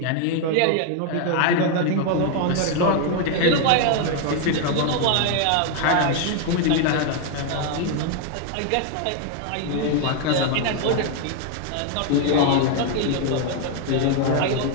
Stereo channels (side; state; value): both; different; correlation 0.01